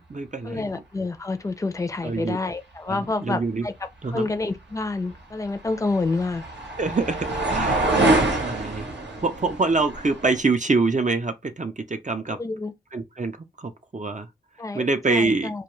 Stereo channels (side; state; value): both; normal; correlation 0.61